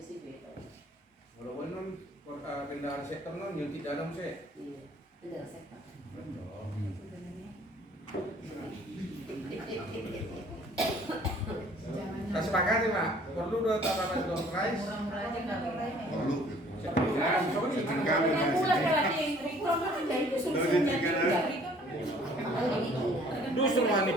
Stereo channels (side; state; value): both; normal; correlation 0.55